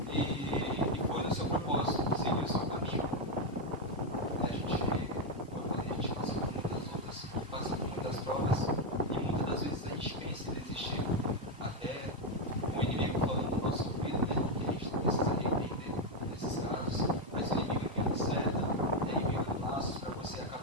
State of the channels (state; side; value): normal; both; correlation 0.05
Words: e foi no seu propósito, seguiu o seu caminho. A gente passa por muitas outras, passa por muitas provas, e muitas das vezes a gente pensa em desistir, até o inimigo falando no nosso ouvido, né, que a gente precisa repreender nesses casos, mas o inimigo enviando seta, enviando laços para você